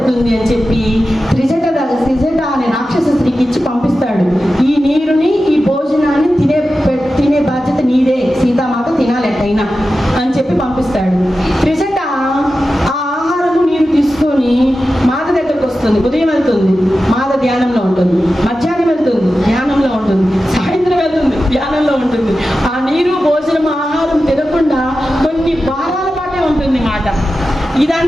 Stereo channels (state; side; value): normal; both; correlation 0.93